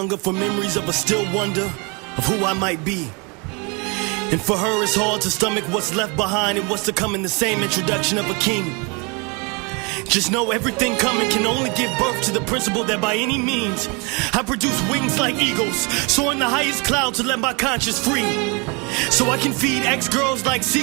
for memories of a still wonder of who I might be. And for her it's hard to stomach what's left behind and what's to come in the same introduction of a king. Just know everything coming can only give birth to the principle that by any means I produce wings like eagles, soaring the highest clouds to let my conscience free. So I can feed ex-girls like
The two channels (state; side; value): quieter; left; 30.7 dB